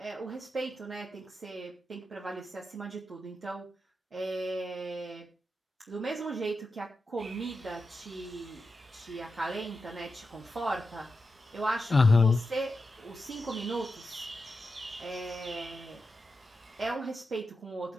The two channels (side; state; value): both; normal; correlation 0.89